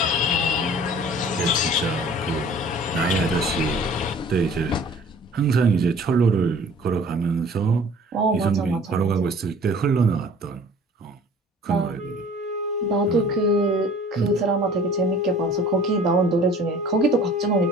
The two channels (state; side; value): normal; both; correlation 0.49